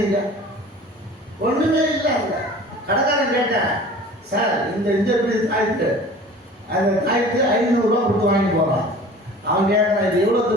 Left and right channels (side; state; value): both; normal; correlation 0.43